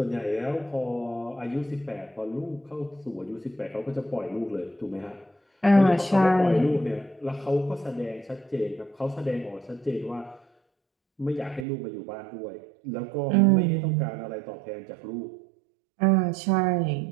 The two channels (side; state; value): left; drops out; at 11.7 s